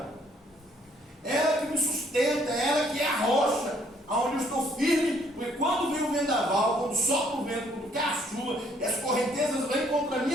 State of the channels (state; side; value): normal; both; correlation 0.65